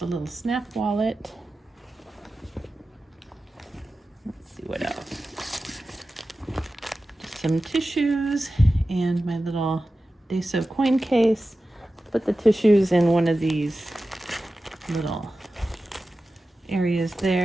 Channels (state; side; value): normal; both; correlation 0.94